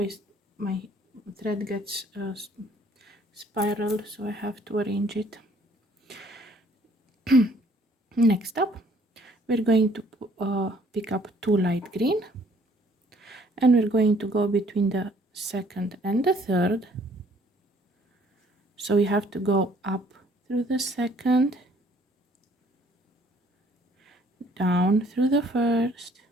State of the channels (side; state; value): both; normal; correlation 0.61